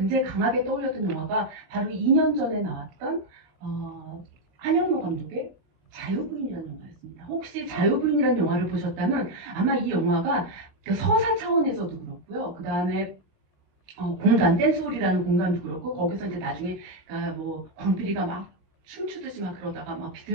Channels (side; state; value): left; late; 16 ms